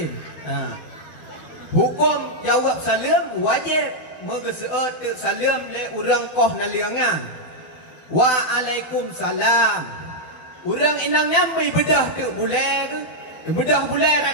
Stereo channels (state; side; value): late; right; 12 ms